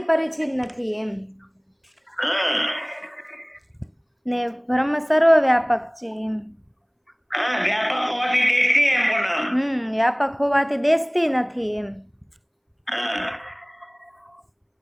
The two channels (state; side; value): identical; both; correlation 1.00